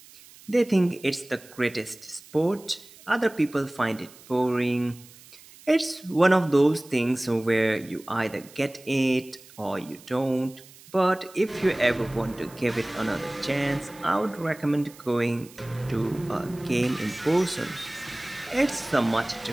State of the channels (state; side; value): noise; right; hiss, 22 dB below the sound